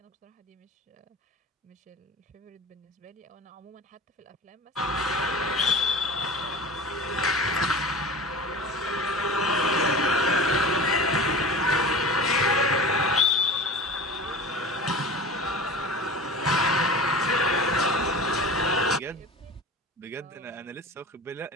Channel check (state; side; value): normal; both; correlation 0.35